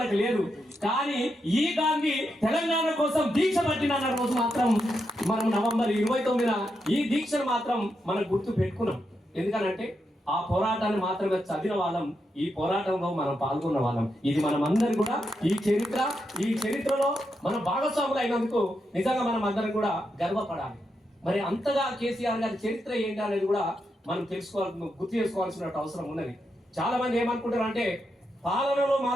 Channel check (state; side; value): normal; both; correlation 0.84